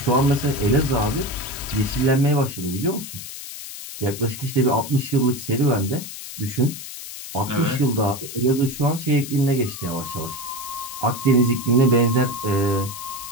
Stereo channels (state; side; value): noise; left; hiss, 11 dB below the sound